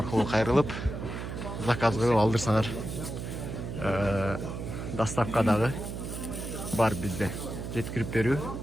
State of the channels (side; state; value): right; noise; hum, 6 dB below the sound